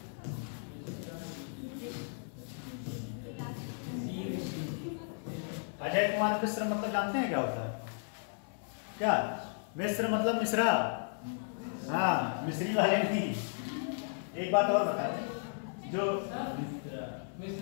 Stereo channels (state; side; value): silent; right; 55 dB below the other